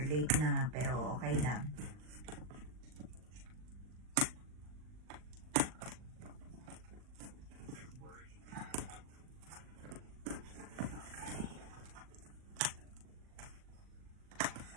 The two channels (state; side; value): late; left; 39 ms